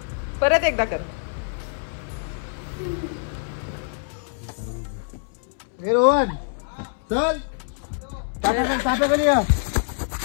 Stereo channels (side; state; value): right; silent; 62 dB below the other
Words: परत एकदा कर. रोहन चल